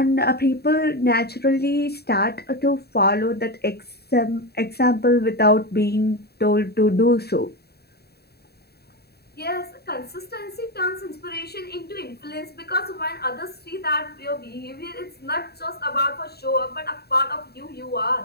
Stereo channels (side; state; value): right; late; 0.47 ms